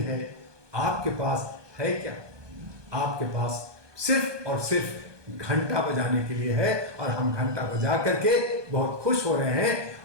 है। आपके पास है क्या? आपके पास सिर्फ और सिर्फ घंटा बजाने के लिए है, और हम घंटा बजा करके बहुत खुश हो रहे हैं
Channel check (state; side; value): late; left; 1.2 ms